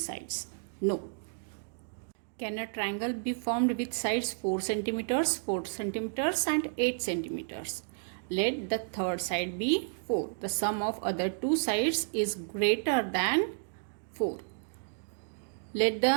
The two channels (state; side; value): silent; left; digital silence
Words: No. Can a triangle be formed with sides 4 centimeters, 4 centimeters and 8 centimeters? Let the third side be 4. The sum of other 2 sides is greater than 4. Let